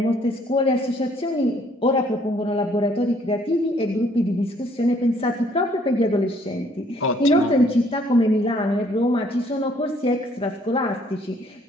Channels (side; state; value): both; normal; correlation 0.63